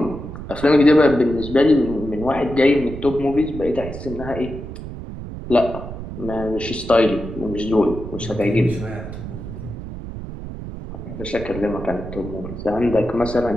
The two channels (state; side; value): noise; right; rumble, 10 dB below the sound